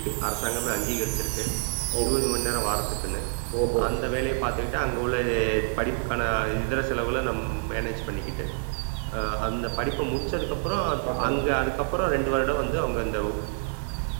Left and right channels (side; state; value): left; silent; digital silence